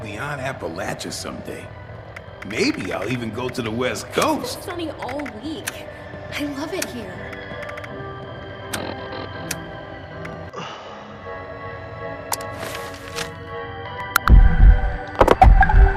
beyond Appalachia someday. Maybe I'll even go to the West Coast. Sunny all week. I love it here.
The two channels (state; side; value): identical; both; correlation 1.00